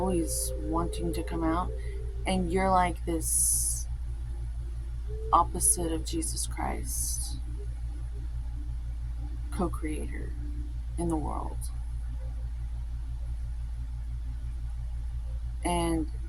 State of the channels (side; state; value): both; identical; correlation 1.00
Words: wanting to come out, and you're like this opposite of Jesus Christ, co-creator in the world. And